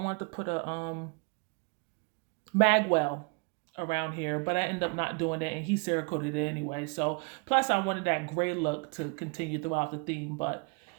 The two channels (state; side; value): quieter; left; 32.8 dB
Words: to put a magwell around here, but I ended up not doing it and he Cerakoted it anyway. So plus I wanted that gray look to continue throughout the theme, but